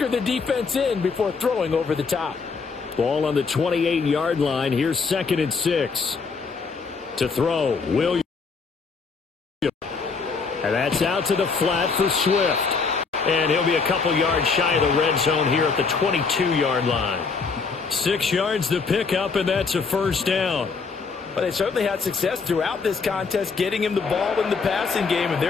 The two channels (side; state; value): right; quieter; 4.9 dB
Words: the defense in before throwing over the top. Ball on the 28-yard line. Here's 2nd and 6. To throw, Williams. And that's out to the flat for Swift. And he'll be a couple yards shy of the red zone here at the 22-yard line. 6 yards to pick up, and that's a first down. Well, they certainly had success throughout this contest, getting him the ball in the passing game, and